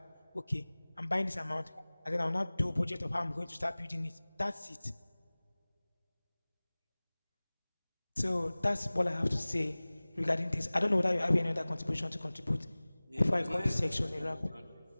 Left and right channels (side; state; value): both; inverted; correlation -1.00